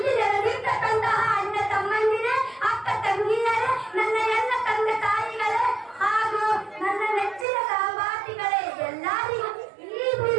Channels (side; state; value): left; drops out; at 7.5 s